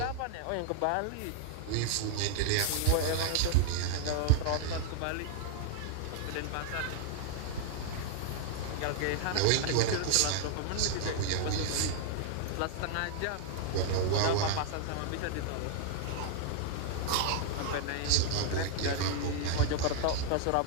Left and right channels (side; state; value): both; different; correlation 0.00